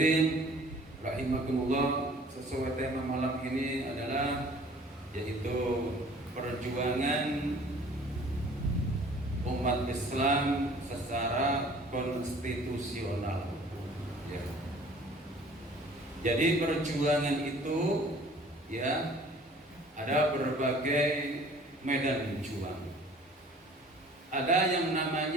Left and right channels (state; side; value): normal; both; correlation 0.51